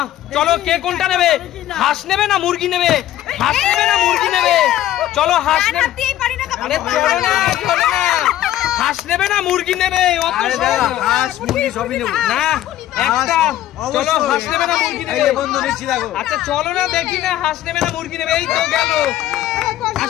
চলো কে কোনটা নেবে? হাঁস নেবে না মুরগি নেবে? চলো হাঁস নেবে। আরে চলো না, হাঁস নেবে না মুরগি নেবে? হাঁস মুরগি সবই নেব না, একটা। চলো হাঁস নেবে না মুরগি নেবে? আচ্ছা চলো না দেখি না, হাঁস নেবে না মুরগি নেবে? এই তো গেল।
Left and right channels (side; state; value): right; quieter; 13.3 dB